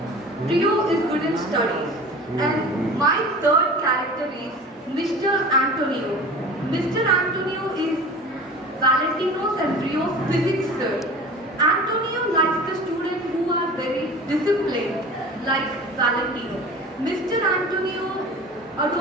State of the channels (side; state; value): both; normal; correlation 0.39